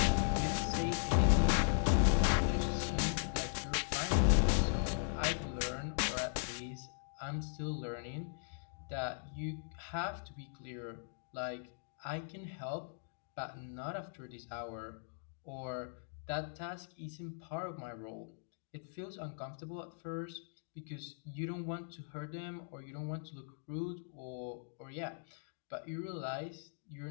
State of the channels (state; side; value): silent; right; digital silence